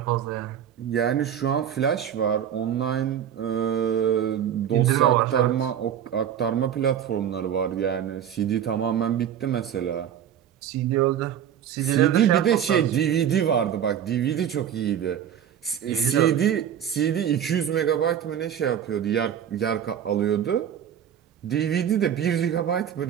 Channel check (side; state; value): left; quieter; 9.4 dB